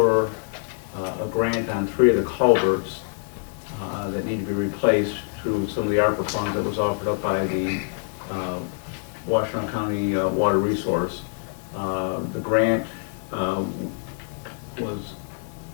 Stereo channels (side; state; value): right; silent; 62 dB below the other